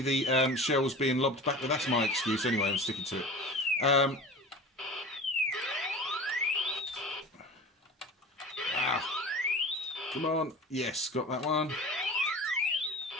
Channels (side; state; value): both; normal; correlation 0.36